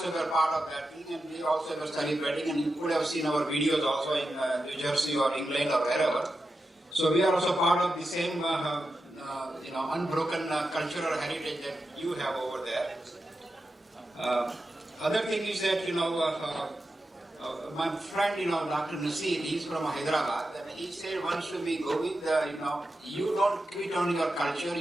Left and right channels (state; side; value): normal; both; correlation 0.90